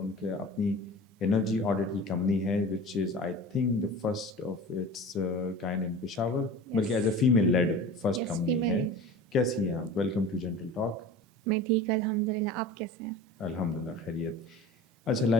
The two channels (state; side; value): normal; both; correlation 0.37